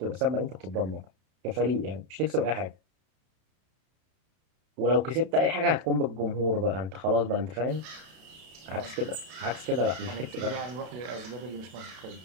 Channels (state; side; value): late; left; 32 ms